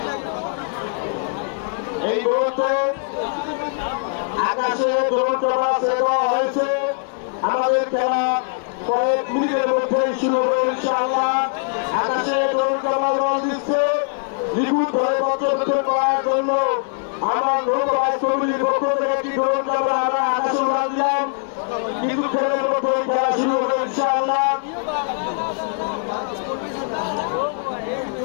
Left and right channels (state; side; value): silent; right; 65 dB below the other